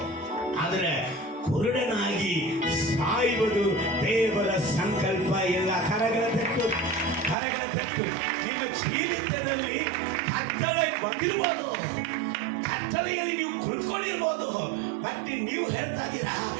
ಆದರೆ ಕುರುಡನಾಗಿ ಸಾಯುವುದು ದೇವರ ಸಂಕಲ್ಪ ಇಲ್ಲ. ಕರಗಳ ತೆತ್ತು ನಿಮ್ಮ ಜೀವಿತದಲ್ಲಿ ಕತ್ತಲೆ ಬಂದಿರ್ಬೋದು, ಕತ್ತಲೆಯಲ್ಲಿ ನೀವು ಕುಳಿತುಕೊಂಡಿರ್ಬೋದು, ಬಟ್ ನೀವು ಹೇಳ್ತಾ ಇದ್ದೀರಾ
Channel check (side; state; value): left; drops out; at 7.4 s